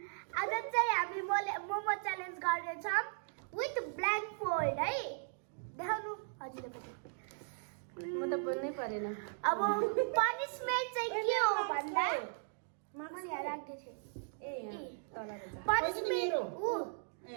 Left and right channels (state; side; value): silent; left; digital silence